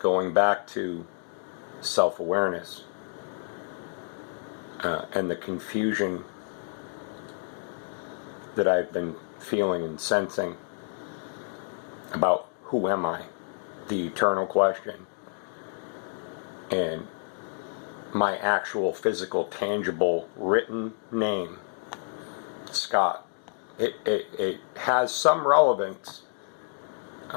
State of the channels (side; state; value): right; silent; digital silence